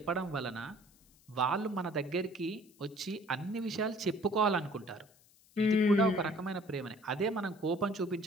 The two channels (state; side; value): noise; left; hiss, 29 dB below the sound